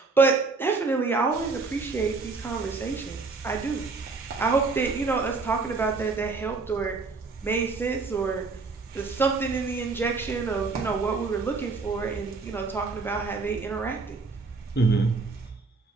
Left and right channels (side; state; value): left; quieter; 4.2 dB